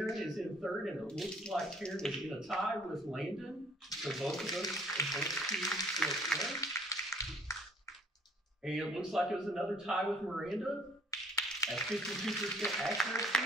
is in third, and it looks like Taryn is in a tie with Landon. So both of us advance to next round. And it looks like it was another tie with Miranda at 52%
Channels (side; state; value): both; normal; correlation 0.58